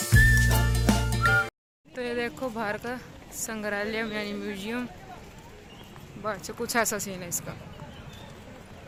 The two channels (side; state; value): both; identical; correlation 1.00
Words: ये देखो बाहर का संग्रहालय यानी म्यूजियम, बाहर से कुछ ऐसा सीन है इसका।